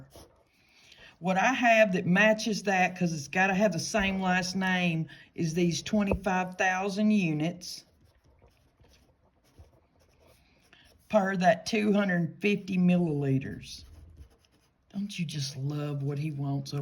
What I have that matches that, because it's got to have the same last name, is these 25,000 units per that 250 milliliters. Don't you just love what he wants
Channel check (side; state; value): both; identical; correlation 1.00